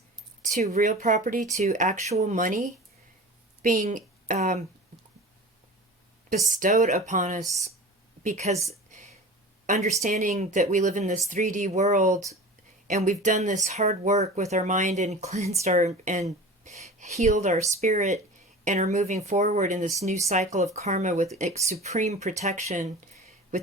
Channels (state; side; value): normal; both; correlation 0.37